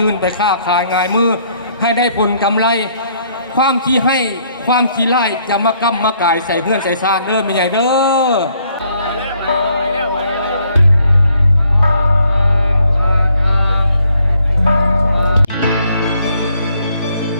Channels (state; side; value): inverted; both; correlation -0.68